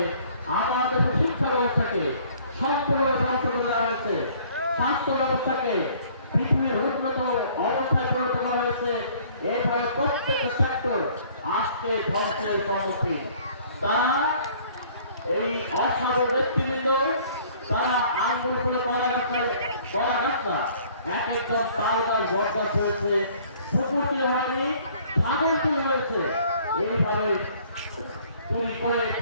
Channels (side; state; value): both; inverted; correlation -0.56